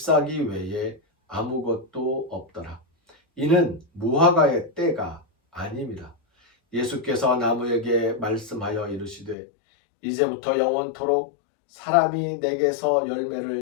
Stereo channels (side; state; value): right; drops out; at 9.3 s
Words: 외에 아무것도 없더라. 이는 무화과의 때가 아님이라. 예수께서 나무에게 말씀하여 이르시되 이제부터 영원토록 사람이 내게서